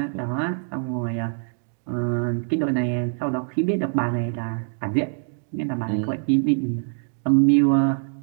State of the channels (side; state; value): left; silent; 58 dB below the other